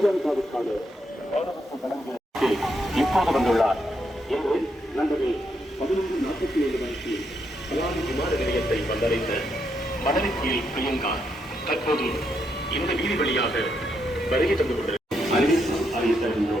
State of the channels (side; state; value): both; normal; correlation 0.79